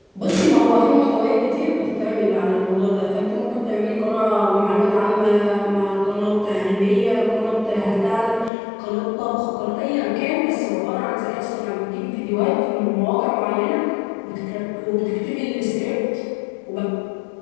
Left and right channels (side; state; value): right; drops out; at 8.5 s